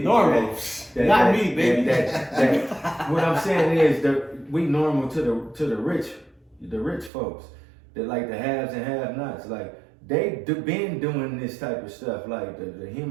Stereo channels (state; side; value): drops out; left; at 7.1 s